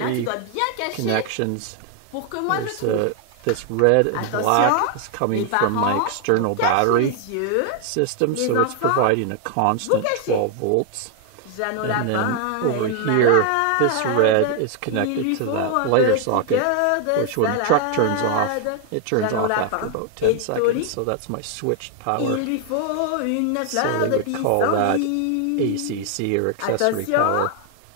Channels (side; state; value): both; different; correlation 0.00